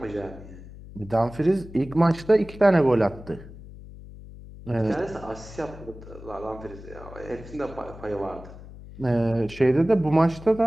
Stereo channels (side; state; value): left; noise; hum, 16 dB below the sound